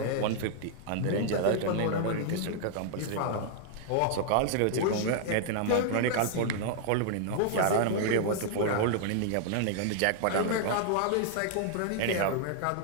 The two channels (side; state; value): both; different; correlation 0.00